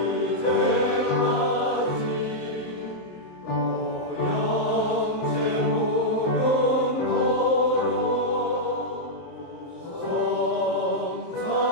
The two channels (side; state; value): right; late; 23 ms